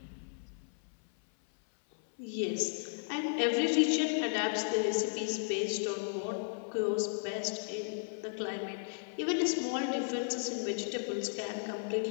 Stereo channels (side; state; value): right; silent; 55 dB below the other